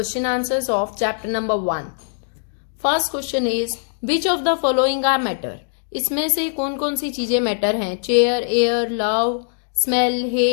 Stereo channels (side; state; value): right; silent; digital silence